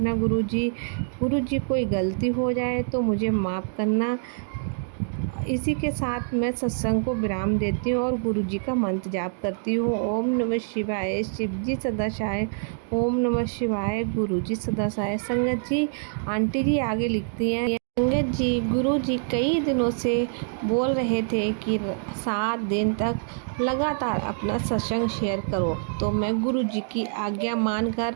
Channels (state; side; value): silent; left; digital silence